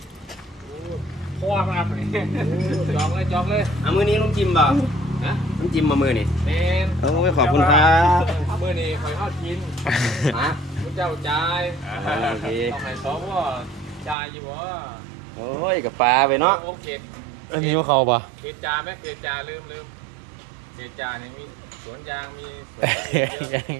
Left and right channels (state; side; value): drops out; left; at 14.2 s